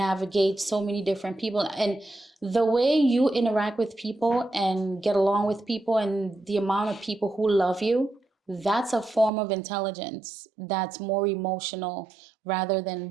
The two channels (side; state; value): left; drops out; at 9.3 s